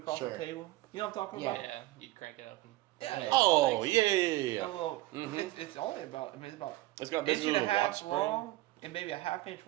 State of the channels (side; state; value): left; quieter; 17.9 dB